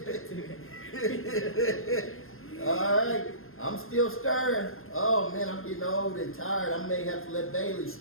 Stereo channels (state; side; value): late; right; 0.61 ms